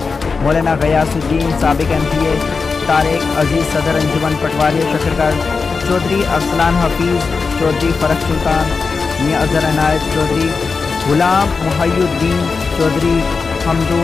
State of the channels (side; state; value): right; quieter; 4.7 dB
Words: मौलाना गयासुद्दीन साबिक MPA, तारिक अजीज़ सदर अंजुमन पटवारी शकरगढ़, चौधरी अरसलान हफीज़, चौधरी फ़रख सुल्तान, मियाँ अज़हर अनायत चौधरी, गुलाम मुहय्युद्दीन चौधरी,